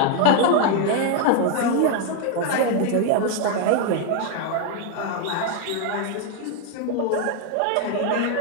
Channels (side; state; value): both; different; correlation 0.01